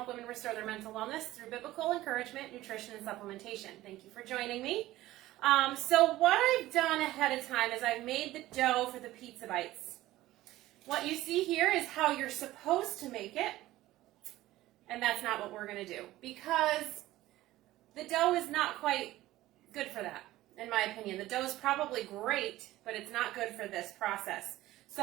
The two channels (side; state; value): left; quieter; 16.1 dB